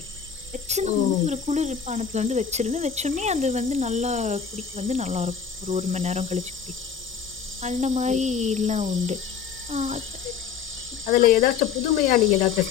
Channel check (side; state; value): right; quieter; 6.9 dB